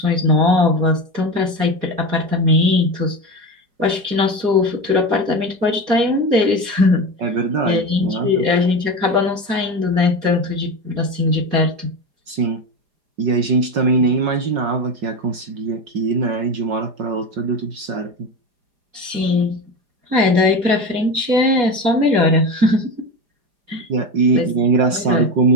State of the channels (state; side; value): late; left; 4.2 ms